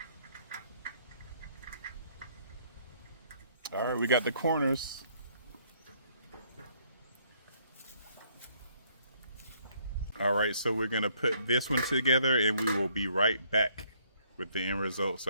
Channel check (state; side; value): inverted; both; correlation -0.66